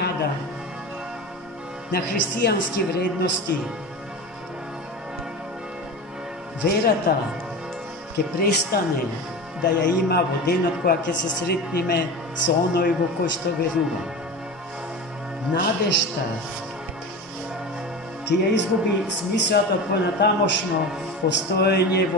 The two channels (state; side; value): normal; both; correlation 0.29